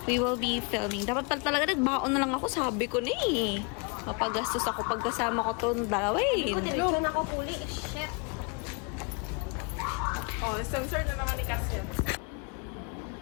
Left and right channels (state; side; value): quieter; right; 33.7 dB